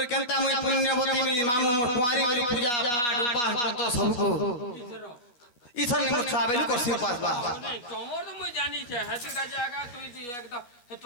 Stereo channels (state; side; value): late; right; 12 ms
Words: কেনতা মুই পুণ্যবতী মামু মোর কুয়ারি বলি পূজা পাঠ উপাস ব্রত সবকো ইথর নে মোর ছুয়া বেলু করছি উপাস বা তোমার তো মই জানি છે হাতে কাজে আগা তুই একদম হে